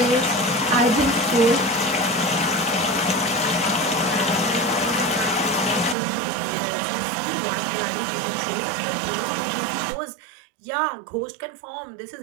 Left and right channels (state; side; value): drops out; left; at 6.0 s